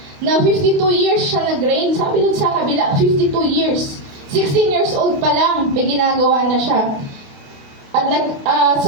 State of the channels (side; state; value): left; late; 28 ms